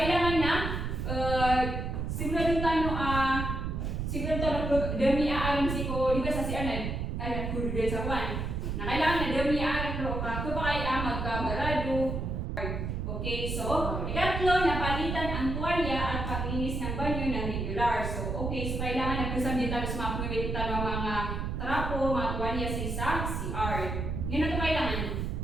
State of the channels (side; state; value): right; noise; rumble, 2 dB below the sound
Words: na siguro tayo dami aaram si ko, di ba sa si Arnad kurugay sa one. Na kailangan na dami aaram ro ka, kung kaya magkabarado. Okay, so ikatlo, napalitan ang tuwalya at paglinis ng banyo ng regular. So, okay, so kailangan nagkasabit tayo sa mga pumilitan ng mga trapo, mga tuwalya sa CR. Ngayon na ito kailangan.